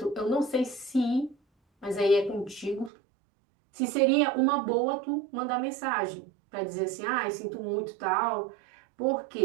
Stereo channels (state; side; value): drops out; left; at 2.9 s